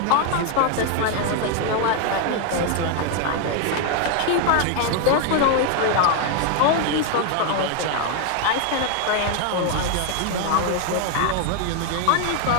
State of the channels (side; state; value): both; different; correlation 0.01